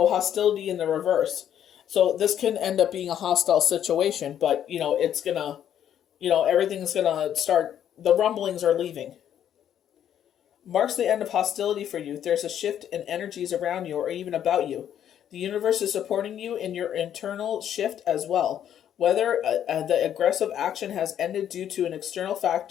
in the reverse. So this can end up being a hostile situation, but, it's going to, everything's going to start, the rumblings are leaving. Marks the end of hostility for you. There's a shift in energies around you or even about you. The universe is supporting you in your internal shift as well. Whether the aggressive action has ended due to an external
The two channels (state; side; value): quieter; right; 10.0 dB